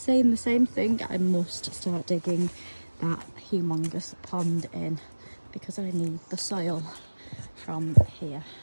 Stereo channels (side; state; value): both; inverted; correlation -1.00